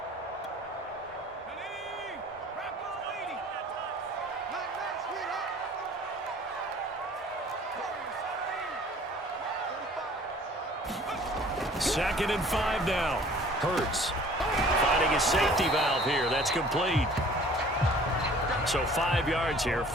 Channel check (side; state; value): both; normal; correlation 0.51